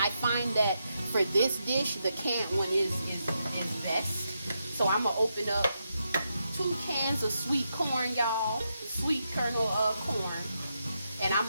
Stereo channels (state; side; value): inverted; both; correlation -0.83